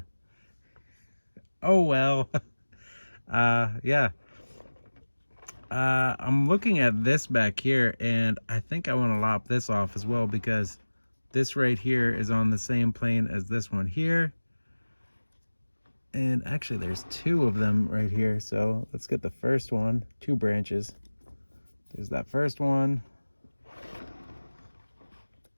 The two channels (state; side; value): inverted; both; correlation -1.00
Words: oh well. Yeah. I'm looking at this back here, and I think I want to lop this off as well, because this right here is on the same plane as this one here. And actually there's two of them right here, so let's get the first one. 2 branches. There's that first one,